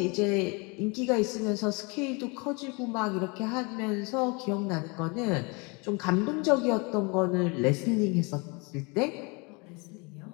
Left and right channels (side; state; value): right; quieter; 29.8 dB